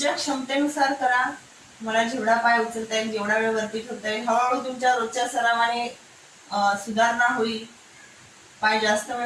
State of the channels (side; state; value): both; identical; correlation 1.00